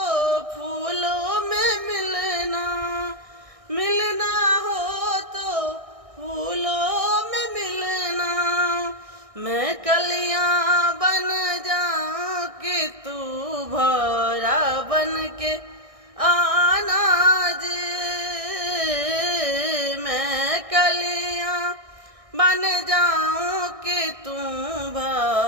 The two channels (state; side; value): late; left; 1.6 ms